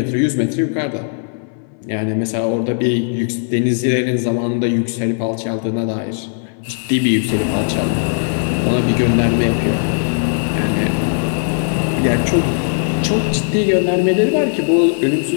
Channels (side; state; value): right; silent; 68 dB below the other